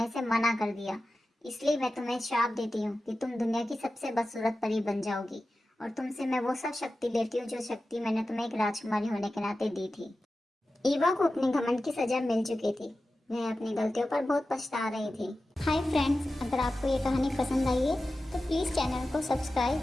से मना कर दिया। इसलिए मैं तुम्हें श्राप देती हूँ कि तुम दुनिया की सबसे बदसूरत परी बन जाओगी और तुमसे मैं वो सब शक्ति लेती हूँ जो शक्ति मैंने तुम्हें एक राजकुमारी होने के नाते दी थी। ईवा को अपने घमंड की सजा मिल चुकी थी। वह अपनी गलतियों पर बहुत पछता रही थी। हाय फ्रेंड्स, अगर आपको ये कहानी पसंद आई है तो प्लीज़ चैनल को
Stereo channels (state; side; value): normal; both; correlation 0.94